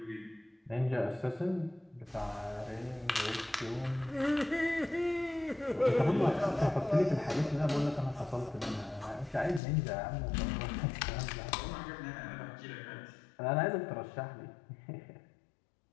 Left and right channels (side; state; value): right; drops out; at 9.6 s